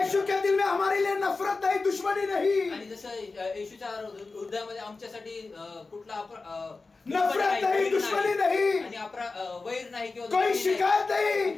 के दिल में हमारे लिए नफरत नहीं, दुश्मनी नहीं, आणि जसं येशूच्या हृदयामध्ये आमच्यासाठी कुठला नफरत नहीं, दुश्मनी नहीं, आणि वैर नाही किंवा कोई दुश्मनी शिकायत नाही, नहीं.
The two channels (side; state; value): right; quieter; 3.9 dB